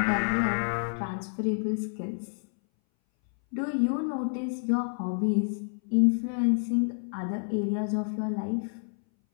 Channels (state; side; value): silent; right; 59 dB below the other